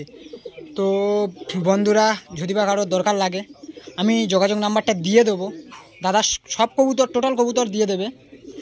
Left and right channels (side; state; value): both; identical; correlation 1.00